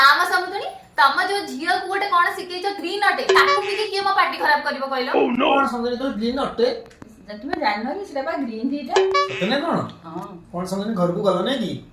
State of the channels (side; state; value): both; identical; correlation 1.00